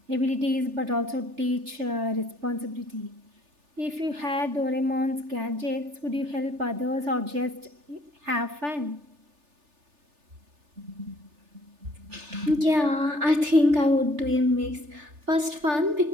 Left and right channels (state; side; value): late; left; 3.4 ms